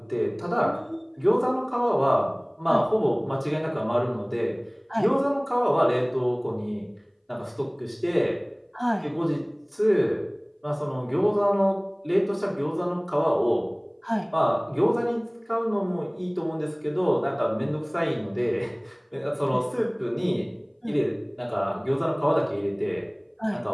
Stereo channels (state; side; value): identical; both; correlation 1.00